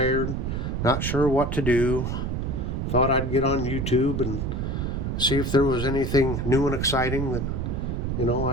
not sure what to do. Thought I'd get on YouTube and see if there was anything new and exciting that,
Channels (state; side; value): noise; right; rumble, 2 dB below the sound